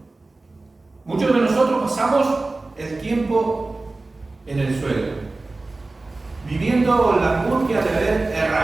Muchos de nosotros pasamos el tiempo en el suelo, viviendo la angustia de haber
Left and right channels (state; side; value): quieter; left; 3.3 dB